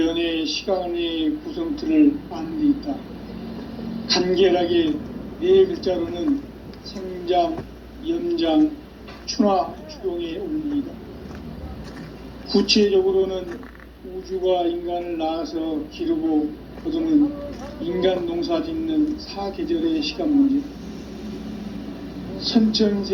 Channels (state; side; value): identical; both; correlation 1.00